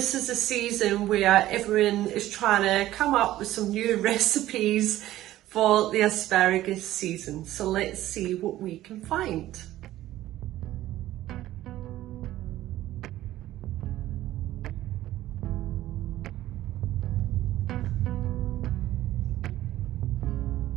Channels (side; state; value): left; quieter; 14.6 dB